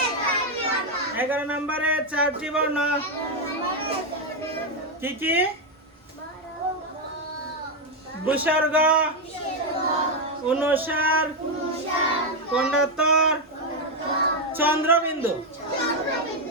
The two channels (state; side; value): normal; both; correlation 0.04